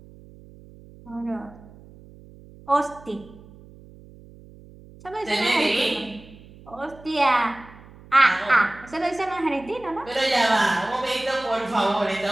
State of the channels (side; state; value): right; noise; hum, 21 dB below the sound